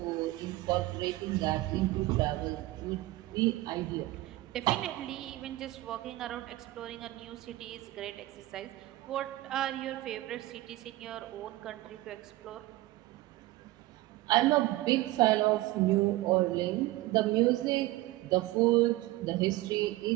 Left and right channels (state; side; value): quieter; left; 18.0 dB